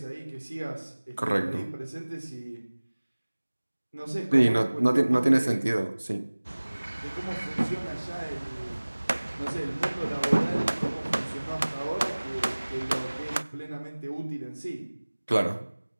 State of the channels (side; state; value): both; inverted; correlation -1.00